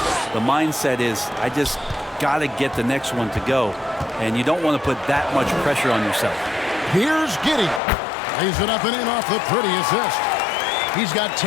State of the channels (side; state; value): right; drops out; at 7.8 s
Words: the mindset is, I just got to get the next one to go. And you don't want to put that much pressure on yourself. Here's Giddey. Lays it up and in off the pretty assist. He's got